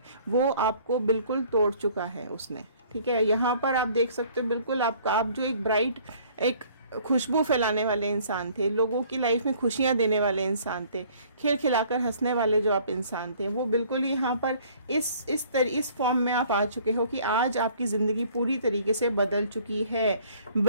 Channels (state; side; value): inverted; both; correlation -0.56